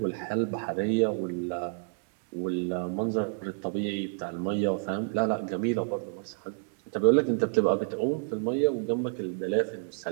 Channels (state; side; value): silent; left; 58 dB below the other